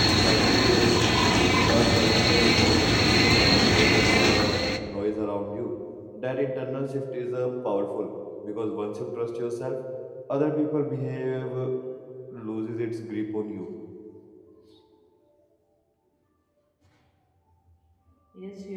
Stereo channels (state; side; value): identical; both; correlation 1.00